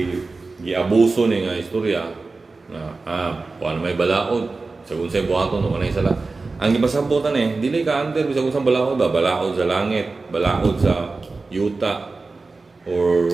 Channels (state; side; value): quieter; left; 3.8 dB